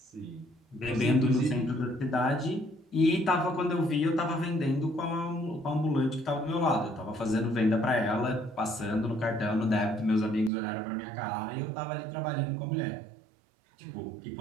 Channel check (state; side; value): drops out; left; at 10.5 s